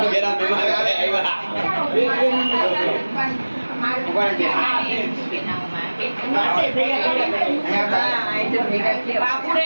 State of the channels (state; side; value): inverted; both; correlation -1.00